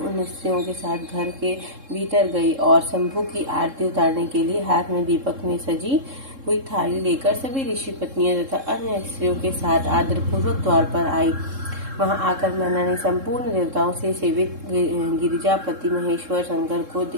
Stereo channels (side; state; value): left; late; 3.7 ms